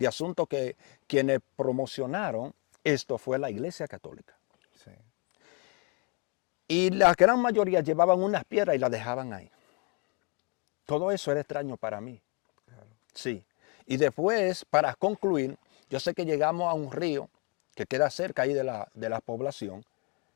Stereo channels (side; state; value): right; quieter; 33.4 dB